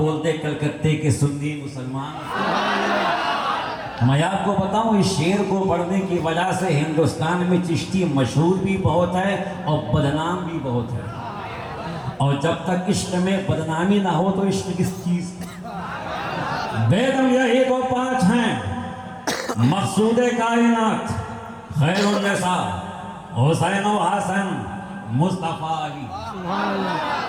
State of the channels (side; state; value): both; identical; correlation 1.00